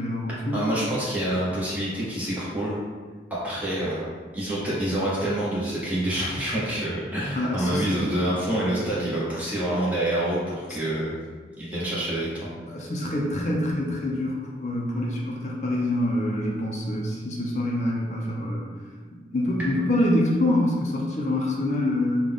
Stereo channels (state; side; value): normal; both; correlation 0.65